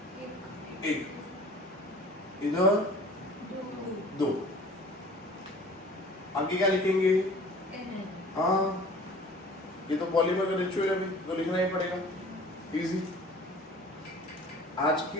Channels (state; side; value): normal; both; correlation 0.46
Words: 1, इधर 2, आगे क्या लिखेंगे? हाँ, ये तो पॉलीमर का रिचुअल है, तो लिखना ही पड़ेगा, इजी। आज